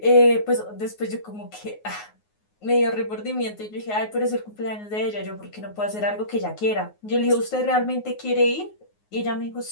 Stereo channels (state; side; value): late; right; 9.5 ms